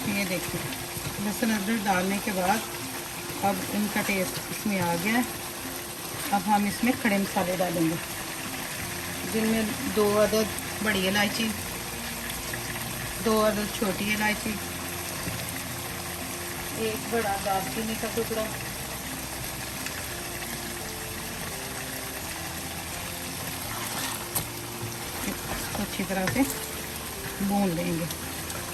ये देखिए लहसुन अदरक डालने के बाद अब इनका टेस्ट इसमें आ गया है। अब हम इसमें खड़े मसाले डालेंगे, जिनमें 2 अदद बड़ी इलायची, 2 अदद छोटी इलायची, 1 बड़ा दालचीनी का टुकड़ा, इसको अच्छी तरह से भून लेंगे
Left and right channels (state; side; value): identical; both; correlation 1.00